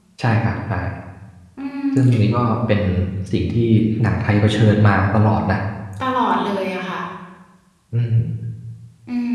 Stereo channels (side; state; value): both; identical; correlation 1.00